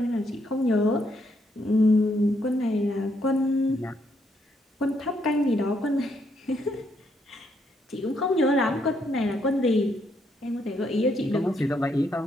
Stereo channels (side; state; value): both; normal; correlation 0.74